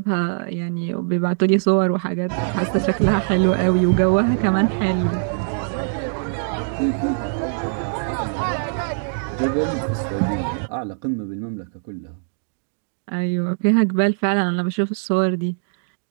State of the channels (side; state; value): left; silent; digital silence